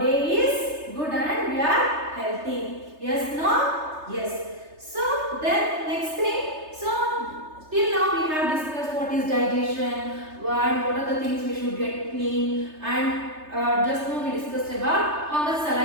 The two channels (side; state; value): left; late; 3.3 ms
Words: day is good and we are healthy. Yes, no? Yes. So then next thing, so till now we have discussed what is digestion and what are the things we should get clean, and just now we discussed about how much